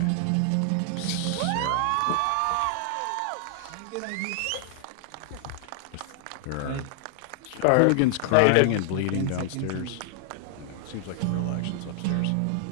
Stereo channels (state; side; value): different; both; correlation 0.00